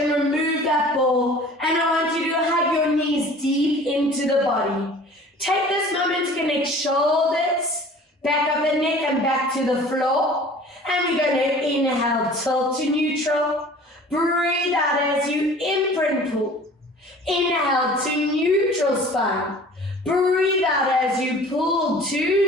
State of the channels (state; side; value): normal; both; correlation 0.46